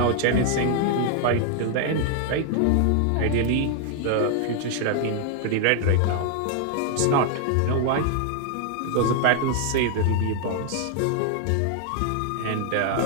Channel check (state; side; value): different; both; correlation 0.00